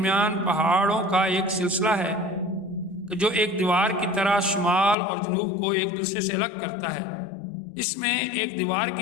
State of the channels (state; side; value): drops out; right; at 5.0 s